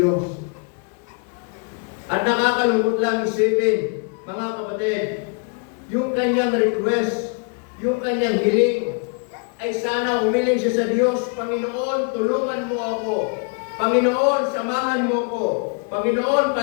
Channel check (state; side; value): quieter; right; 36.8 dB